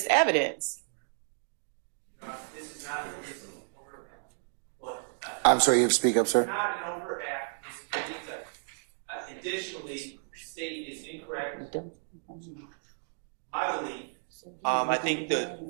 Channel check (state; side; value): silent; left; digital silence